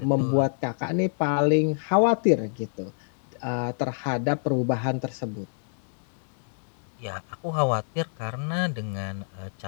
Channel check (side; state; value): right; silent; digital silence